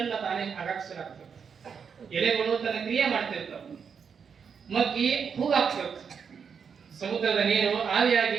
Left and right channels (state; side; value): quieter; left; 6.5 dB